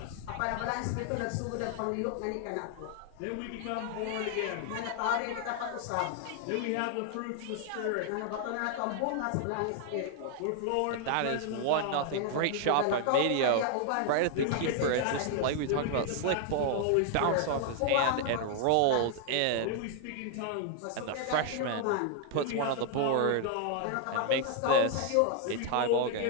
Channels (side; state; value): both; different; correlation 0.00